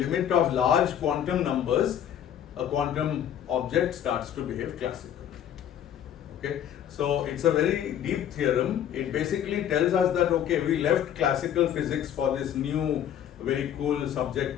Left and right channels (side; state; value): right; quieter; 10.0 dB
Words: of large quantum numbers, a quantum object starts to behave classical. Okay, so it's a very deep theorem. It basically tells us that, okay, we left classical physics for this new very cool